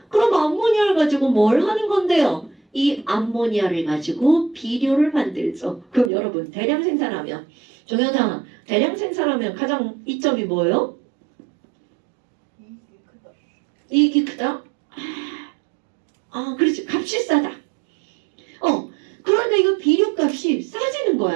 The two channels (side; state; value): left; drops out; at 6.1 s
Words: 그럼 암모니아를 가지고 뭘 하는 건데요? 이 암모니아를 가지고 비료를 만들죠. 그럼 여러분, 대량 생산하면, 종현아, 대량 생산하면 가장 이점이 뭐예요? 이익이 크다? 그렇지. 값이 싸다. 그러니까 이거 비료값이 싸지는